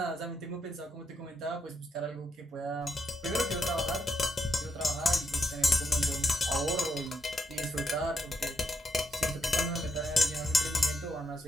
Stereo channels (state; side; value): normal; both; correlation 0.79